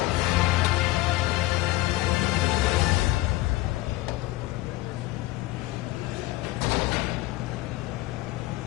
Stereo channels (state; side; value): quieter; right; 17.9 dB